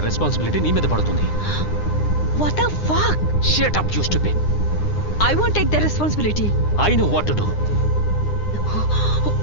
రెస్పాన్సిబిలిటీ నీ మీద పడుతుంది. What the fuck? Shut up, you stupid. I won't take the responsibility. I know what to do.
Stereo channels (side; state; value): right; late; 9.8 ms